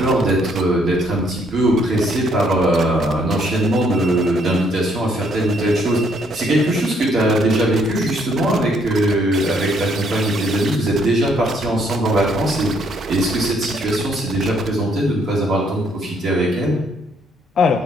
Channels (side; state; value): both; normal; correlation 0.68